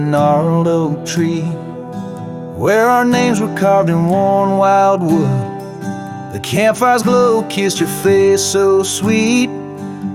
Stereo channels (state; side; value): identical; both; correlation 1.00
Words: oak tree, where our names were carved in worn wild wood, the campfire's glow kissed your face so sweet